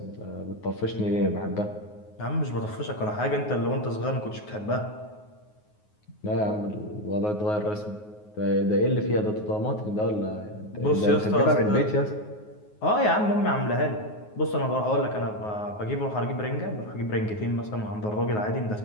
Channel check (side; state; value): right; late; 9.5 ms